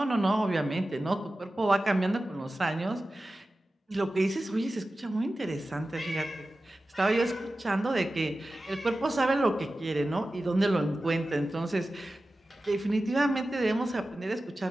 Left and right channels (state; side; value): normal; both; correlation 0.94